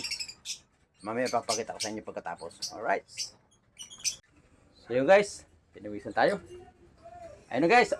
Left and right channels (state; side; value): identical; both; correlation 1.00